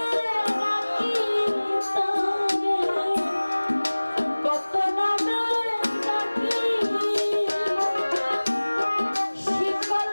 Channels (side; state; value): both; inverted; correlation -1.00